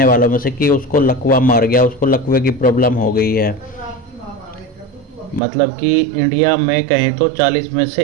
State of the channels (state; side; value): drops out; left; at 5.4 s